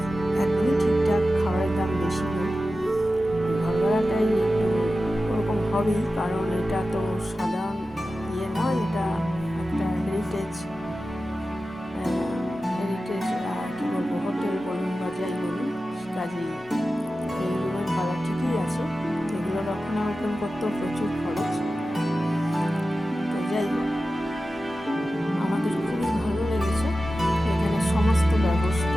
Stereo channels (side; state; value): both; normal; correlation 0.93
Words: একদমই ঠিকঠাক, খাবারের দাম বেশি নেই। ঘর ভাড়াটাই একটু ওরকম হবেই, কারণ এটা তো সাধারণ ইয়ে নয়, এটা একটা হেরিটেজ কী বলবো, হোটেল বলুন বা যাই বলুন, কাজেই এই রুমের ভাড়া ঠিকই আছে। এগুলো রক্ষণাবেক্ষণ করতেও প্রচুর খরচ। তো যাই হোক, আমাদের খুবই ভালো লেগেছে এখানে সমস্ত